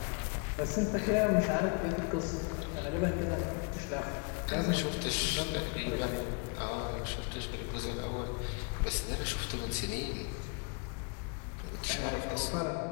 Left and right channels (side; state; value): right; quieter; 34.1 dB